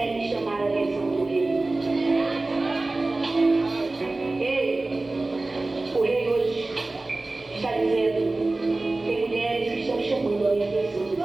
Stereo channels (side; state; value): left; quieter; 3.1 dB